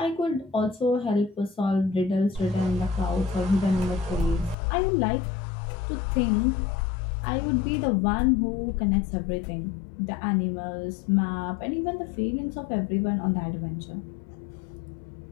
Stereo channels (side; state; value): right; drops out; at 4.5 s